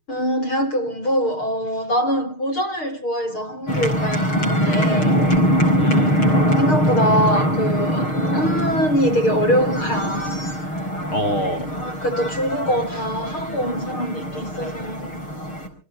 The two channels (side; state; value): right; late; 6.5 ms